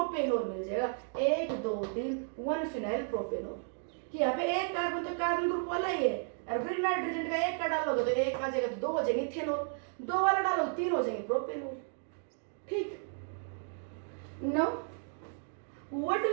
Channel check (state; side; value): silent; left; 55 dB below the other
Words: मिल जाएगा, 1 2 3 1 phenyl propanol, कि यहाँ पे एक कार्बन तो कार्बन ग्रुप वाला ही है, और ग्रिग्नाइट रिएजेंट का एक का डालोगे तो एक आ जाएगा, तो दो हो जाएंगे इथेनॉल, दो वाला डालोगे 3 हो जाएंगे प्रोपेनॉल, ठीक। Now what